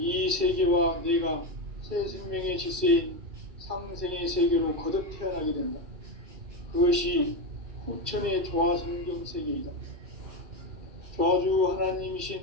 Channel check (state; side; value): late; left; 2.3 ms